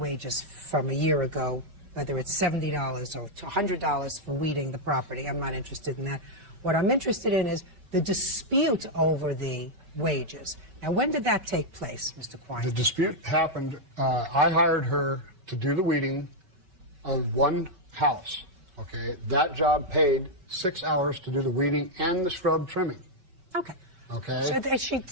from a year ago, whether it's $70 or $100 for weeding the property. I'm not interested in that. What I'm interested in is the dispute over the wages. Now, when did that take place, Mr. Quine? The dispute happened, I hired her to do the weeding on one house, okay? That job paid 6 hours to do the weeding and the scrub trimming. Okay. Okay? So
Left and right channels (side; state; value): left; late; 5.2 ms